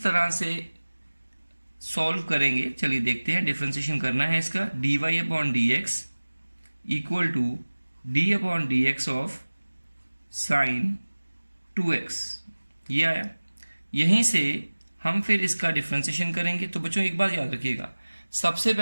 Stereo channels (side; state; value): both; inverted; correlation -1.00